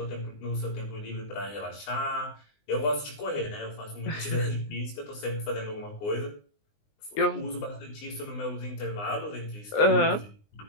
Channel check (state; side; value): late; right; 19 ms